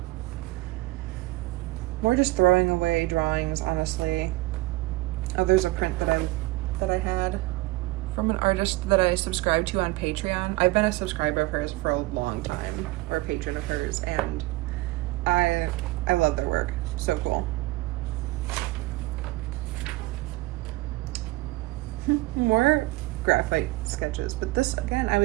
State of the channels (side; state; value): left; quieter; 20.1 dB